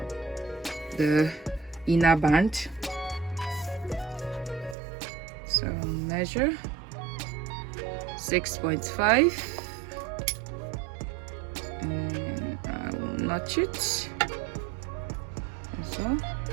the inner band. So measure 6.5, and I will notch it as well,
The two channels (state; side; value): drops out; left; at 4.8 s